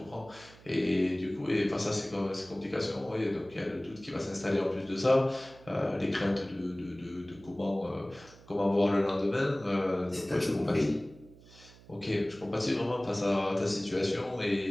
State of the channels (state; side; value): noise; right; hum, 23 dB below the sound